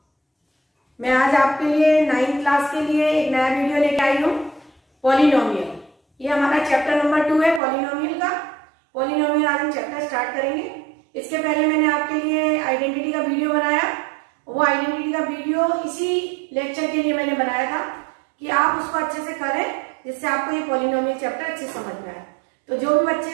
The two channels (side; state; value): left; drops out; at 7.6 s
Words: मैं आज आपके लिए 9th क्लास के लिए एक नया वीडियो लेके आई हूँ। पॉलिनोमियल, ये हमारा चैप्टर नंबर 2 है पॉलिनोमियल का। पॉलिनोमियल आज हम चैप्टर स्टार्ट करेंगे। इसके पहले मैंने आपके लिए आइडेंटिटी का वीडियो बनाया। वो आइडेंटिटी का वीडियो इसी लेक्चर के लिए मैंने बनाया था कि आप उसको अच्छे से करें, जिससे आपको ये पॉलिनोमियल चैप्टर अच्छे समझ में आए। तो जो भी